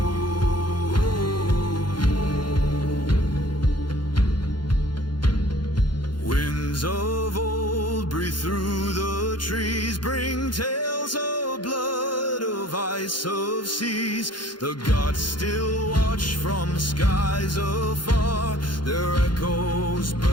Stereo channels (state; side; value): late; right; 0.71 ms